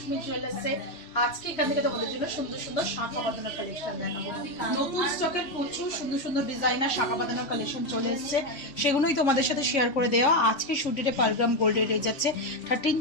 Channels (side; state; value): right; late; 3.6 ms